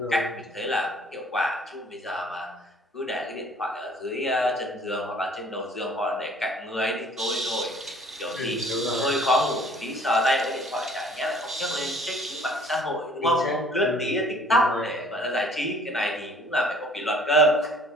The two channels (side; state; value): both; normal; correlation 0.54